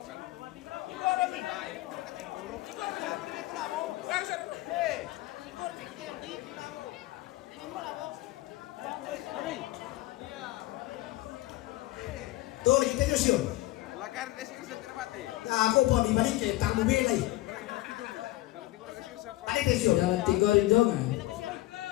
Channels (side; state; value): right; quieter; 18.0 dB